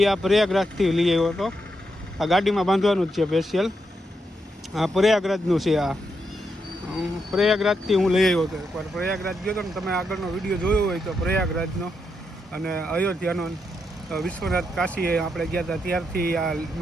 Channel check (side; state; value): both; normal; correlation 0.82